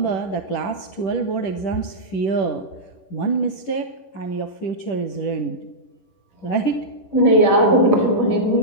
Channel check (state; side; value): late; right; 11 ms